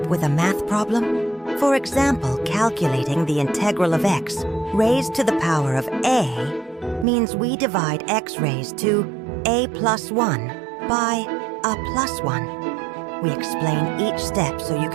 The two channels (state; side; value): drops out; left; at 7.1 s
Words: with a math problem? For example, calculating the integral of x raised to the power of a means we divide x raised to a plus 1 by a plus 1. We explain each step so you